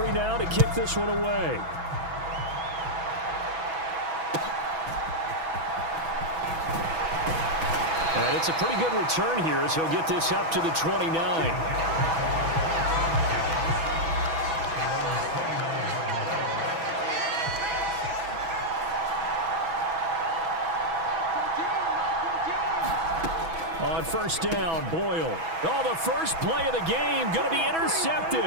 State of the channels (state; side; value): late; left; 6.1 ms